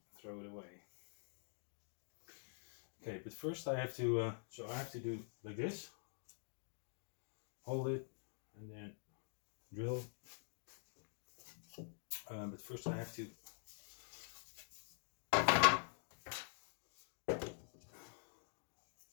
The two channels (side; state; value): right; silent; digital silence